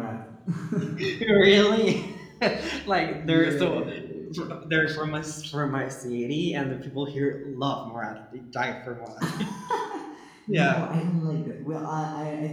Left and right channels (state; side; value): identical; both; correlation 1.00